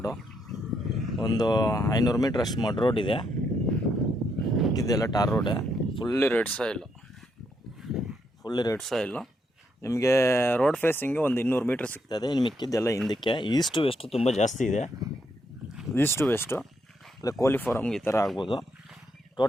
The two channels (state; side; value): normal; both; correlation 0.77